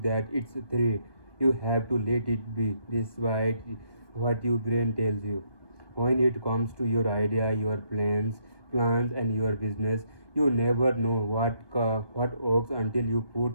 it's 3, you have to let it be despite what your brain tells you. When it comes to your idea, your plans and your business, you never know what works until you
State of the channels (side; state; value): right; late; 1.2 ms